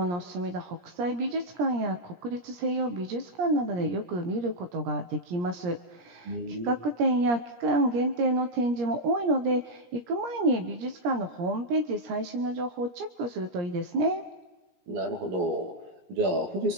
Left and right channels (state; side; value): late; left; 17 ms